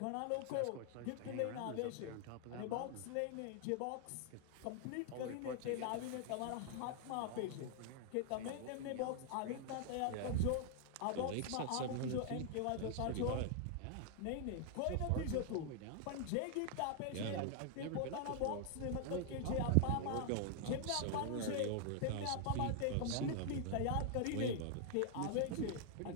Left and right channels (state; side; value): different; both; correlation 0.00